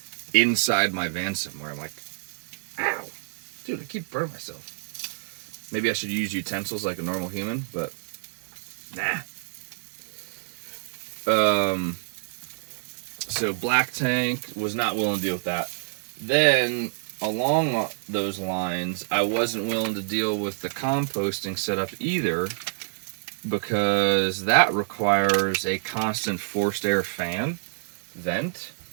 inside my van somewhere. I'm like, ow. Dude, I keep burning myself. Maybe I should use utensils like a normal human, but nah. So black tank, was not willing to deal with that. Then, along those lines, I wasn't willing to deal with the composting setup either, because that requires a constant forced air fan vent.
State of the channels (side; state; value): left; silent; digital silence